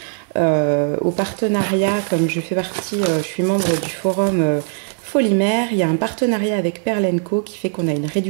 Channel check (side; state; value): left; silent; digital silence